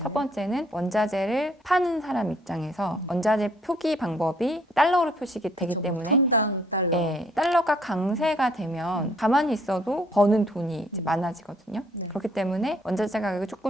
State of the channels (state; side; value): normal; both; correlation 0.64